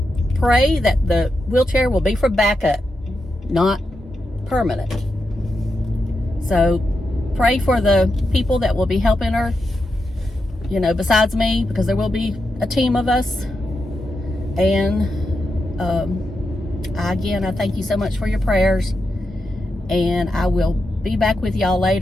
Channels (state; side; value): normal; both; correlation 0.87